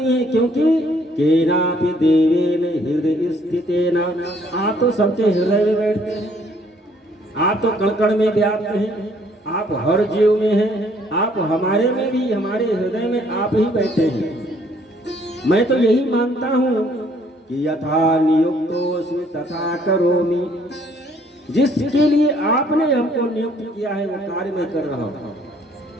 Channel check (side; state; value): both; normal; correlation 0.63